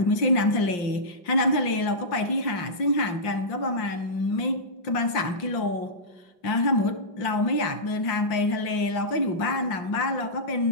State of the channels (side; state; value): right; late; 5.7 ms